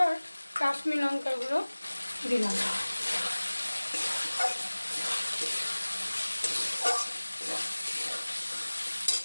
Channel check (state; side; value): inverted; both; correlation -1.00